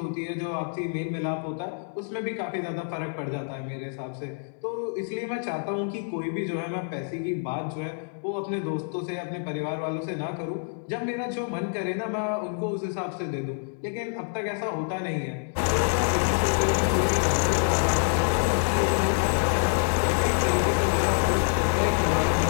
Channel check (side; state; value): right; silent; 60 dB below the other